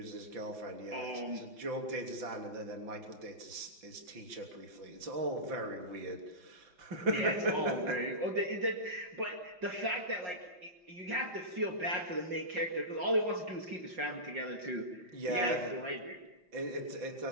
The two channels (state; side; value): late; left; 5.6 ms